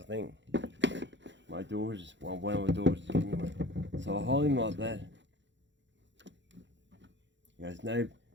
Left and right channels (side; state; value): left; late; 0.53 ms